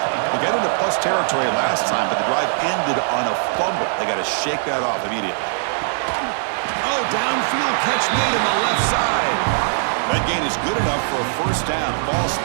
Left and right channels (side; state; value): left; silent; digital silence